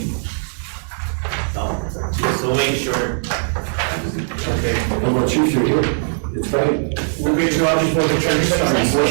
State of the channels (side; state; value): left; silent; digital silence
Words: No, so make sure. okay. How about you, you're here? It's Friday. We'll get you out before the church